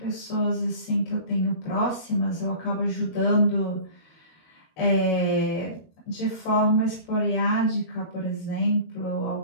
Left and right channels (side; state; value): right; late; 13 ms